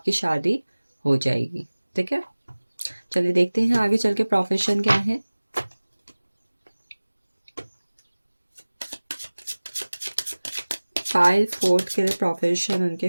शादी हो जाएगी, ठीक है। चलिए देखते हैं आगे चल के प्रोफेशन क्या है। फाइल फोर्थ के लिए प्रोफेशन उनके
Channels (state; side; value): inverted; both; correlation -1.00